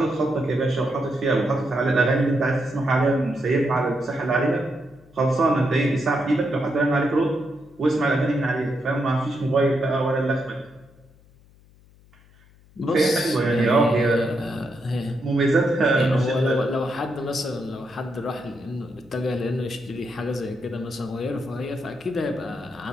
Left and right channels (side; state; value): left; noise; hum, 28 dB below the sound